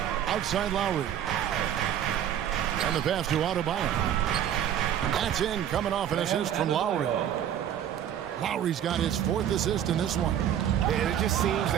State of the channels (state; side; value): quieter; left; 10.1 dB